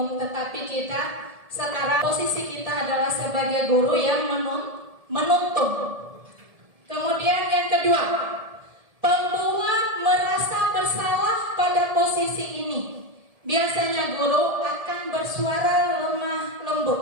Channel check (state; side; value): late; left; 1.7 ms